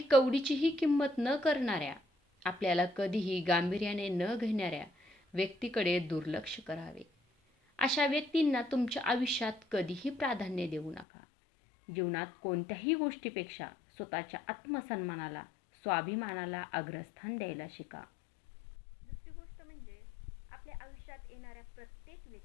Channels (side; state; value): right; drops out; at 11.1 s